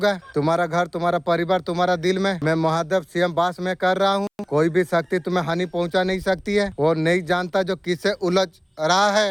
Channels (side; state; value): both; identical; correlation 1.00